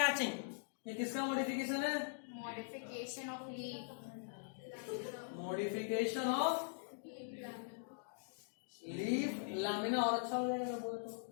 ये किसका मॉडिफिकेशन है? Modification of leaf. Modification of leaf lamina और अच्छा हो जाएगा बोले तो।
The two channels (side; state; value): right; silent; digital silence